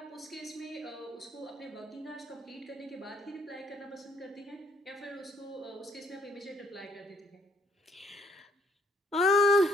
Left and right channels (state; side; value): normal; both; correlation 0.67